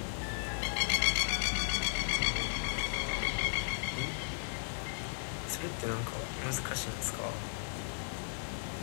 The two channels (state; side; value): silent; right; 54 dB below the other